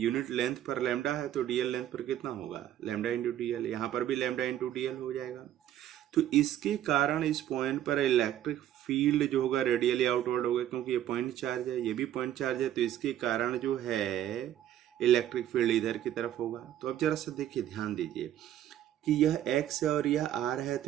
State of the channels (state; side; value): quieter; left; 11.7 dB